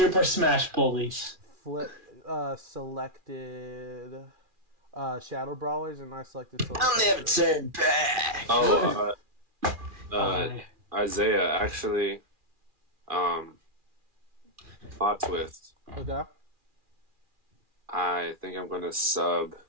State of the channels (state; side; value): late; left; 2.4 ms